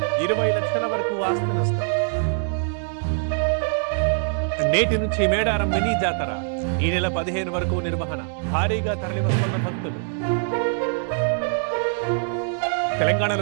20 లక్షల వరకు ఆస్తి నష్టం నేటి నుంచి మేడారం మినీ జాతర ఈ నెల 15 వరకు నిర్వహణ భారీగా తరలివస్తున్న భక్తులు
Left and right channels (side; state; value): left; silent; digital silence